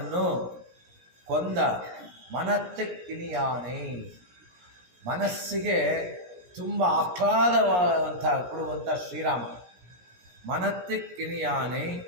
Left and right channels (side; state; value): left; late; 17 ms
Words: ಕೊಂದ ಮನತ್ತಿಕ್ಕಿನಿಯಾನೆ. ಮನಸ್ಸಿಗೆ ತುಂಬ ಆಹ್ಲಾದವಾದಂಥ ಕೊಡುವಂಥ ಶ್ರೀರಾಮ. ಮನತ್ತಿಕ್ಕಿನಿಯಾನೆ